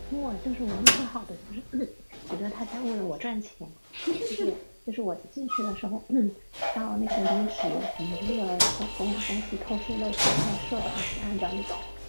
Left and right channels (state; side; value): inverted; both; correlation -1.00